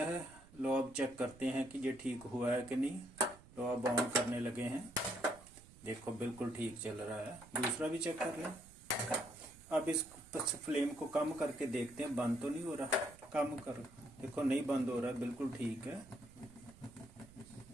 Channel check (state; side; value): noise; right; rumble, 22 dB below the sound